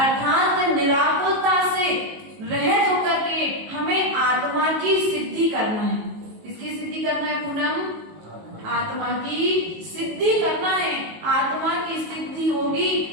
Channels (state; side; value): late; left; 19 ms